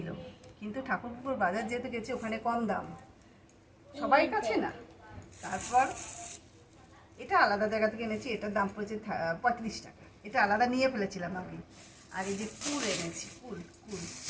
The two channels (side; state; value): both; identical; correlation 1.00